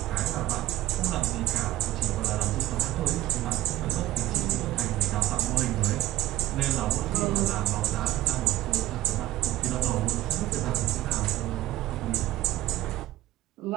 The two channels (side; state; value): left; quieter; 15.1 dB